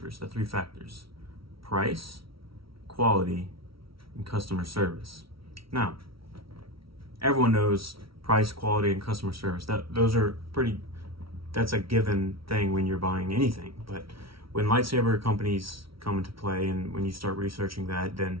The three factors: price, quality, and customer service. Now, everyone knows price, quality, and customer service. That's a given thing when you're buying anything. But when lightsaber companies come into play and when you start researching that,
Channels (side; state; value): left; late; 0.75 ms